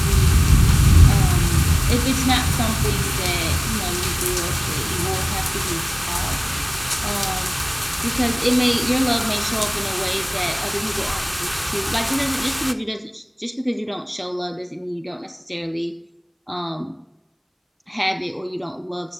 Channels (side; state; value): both; identical; correlation 1.00